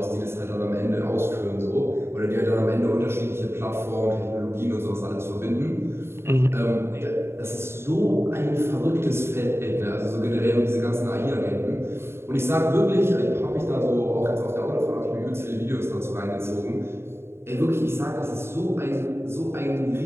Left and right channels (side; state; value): left; late; 0.12 ms